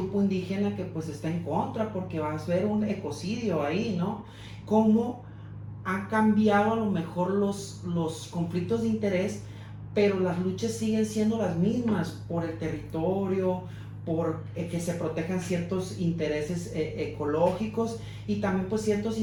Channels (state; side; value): identical; both; correlation 1.00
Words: indígena que pues está en contra porque va a haber un ecocidio ahí, ¿no? ¿Cómo ha cambiado a lo mejor los conflictos de interés pero las luchas siguen siendo las mismas por el territorio, por que se protejan ciertos intereses ecológicos y también pues ciertos